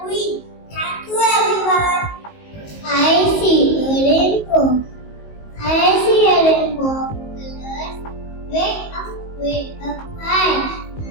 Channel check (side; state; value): right; late; 19 ms